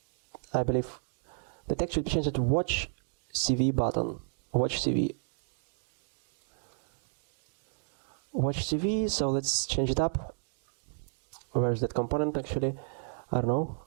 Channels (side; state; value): left; silent; digital silence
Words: I believe the text should be changed to watch CV button. Watch CV. So let's change it up. Where is that component actually? I don't know.